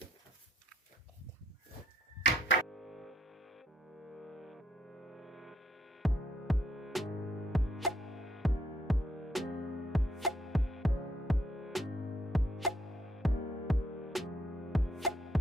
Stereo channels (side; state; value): both; normal; correlation 0.72